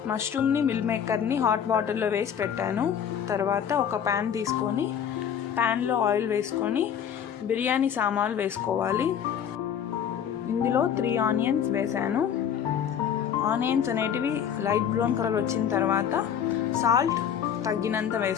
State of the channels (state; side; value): quieter; right; 8.6 dB